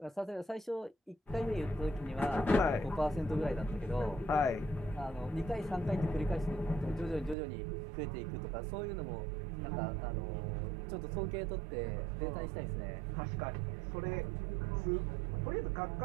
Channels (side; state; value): left; drops out; at 7.4 s